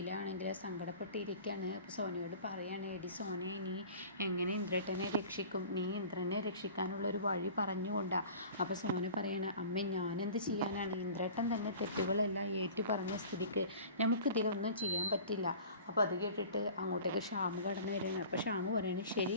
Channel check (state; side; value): inverted; both; correlation -0.43